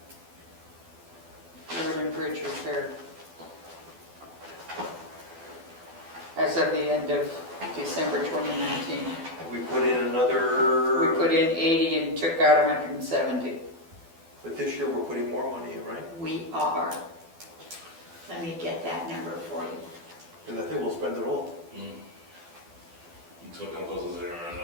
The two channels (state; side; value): late; left; 12 ms